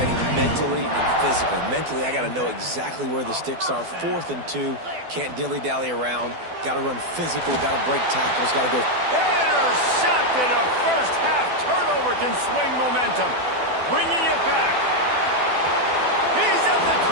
mentally and physically. Mentally, I got to know exactly where the sticks are. 4th and 2, can't dilly-dally around. Got to run physical, got to break tackles, got to go. Intercepted. A first-half turnover can swing momentum. Bringing it back. He's at the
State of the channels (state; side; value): late; left; 12 ms